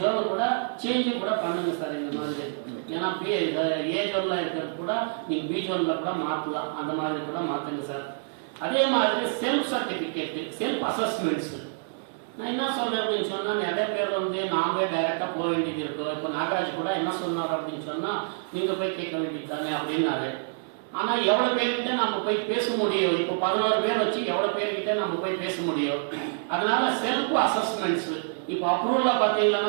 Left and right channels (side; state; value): left; silent; 60 dB below the other